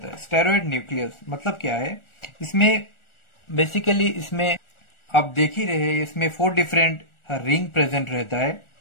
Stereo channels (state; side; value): late; right; 1.4 ms